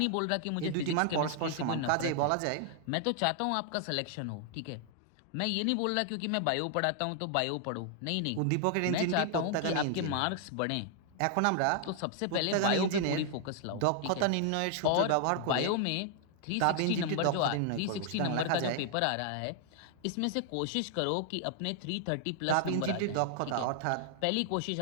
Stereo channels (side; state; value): both; different; correlation 0.00